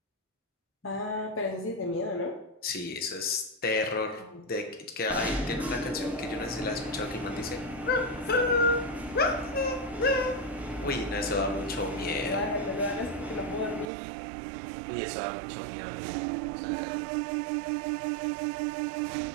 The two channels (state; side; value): drops out; left; at 13.9 s